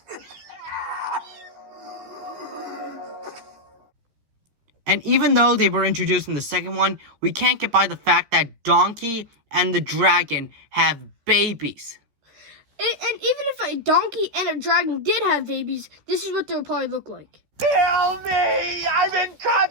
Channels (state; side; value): late; left; 14 ms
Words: And even though they were introduced in the second one, we can't get by the fact that Donkey and the dragon have babies. And even if a donkey and a dragon did have babies, this is what they would probably look like. Kill me! I'm in